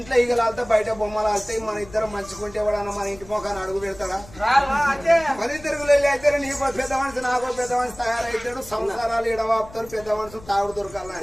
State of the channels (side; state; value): left; noise; rumble, 20 dB below the sound